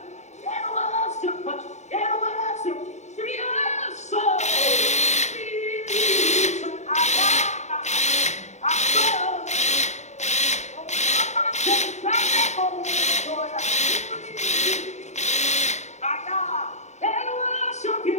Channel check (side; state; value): right; late; 0.33 ms